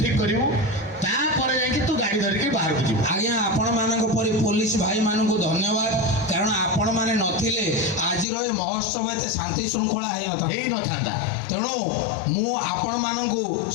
ଠିକ୍ କରିବୁ ତାପରେ ଯାଇକି ତୁ ଗାଡ଼ି ଧରିକି ବାହାରକୁ ଯିବୁ ଆଜ୍ଞା ଆପଣମାନଙ୍କ ପରି ପୋଲିସ ଭାଇମାନଙ୍କୁ ଧନ୍ୟବାଦ କାରଣ ଆପଣମାନେ ନଥିଲେ ଆଜିର ଏ ମହୋତ୍ସବ ଏତେ ଶାନ୍ତି ଶୃଙ୍ଖଳା ହେଇନଥାନ୍ତା ତେଣୁ ମୁଁ ଆପଣମାନଙ୍କୁ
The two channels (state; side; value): drops out; right; at 8.2 s